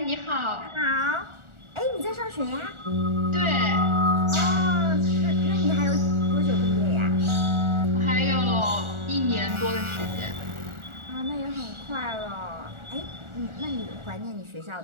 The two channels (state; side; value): late; left; 1.4 ms